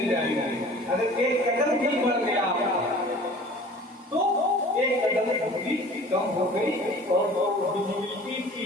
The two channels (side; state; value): both; normal; correlation 0.45